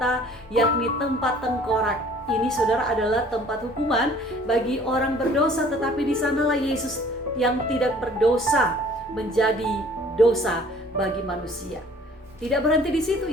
yakni tempat tengkorak. Ini, saudara, adalah tempat hukuman bagi orang berdosa, tetapi di sanalah Yesus yang tidak berdosa menjadi dosa bagi manusia. Tidak berhenti di situ,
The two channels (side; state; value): both; normal; correlation 0.53